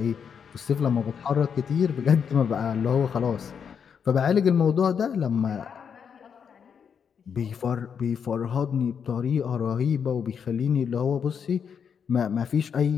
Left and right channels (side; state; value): right; quieter; 7.1 dB